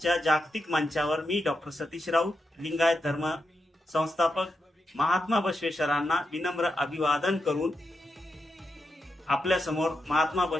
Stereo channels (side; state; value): both; normal; correlation 0.86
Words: जागतिक मंचावर मी डॉक्टर सतीश राऊत लिंगायत धर्म संस्थापक महात्मा बसवेश्वरांना विनम्र अभिवादन करून आपल्या समोर महात्मा